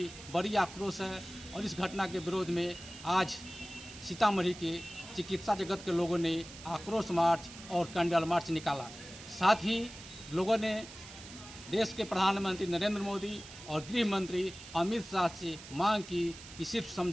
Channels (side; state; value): right; noise; hiss, 15 dB below the sound